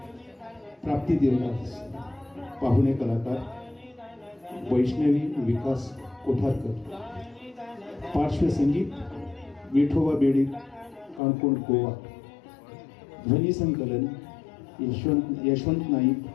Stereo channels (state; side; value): drops out; right; at 11.2 s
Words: प्राप्ती देवदास, पाहुणे कलाकार वैष्णवी विकास कोठारकर, पार्श्वसंगीत विठोबा बेडी काणकोण गोवा, ध्वनी संकलन यशवंत नाईक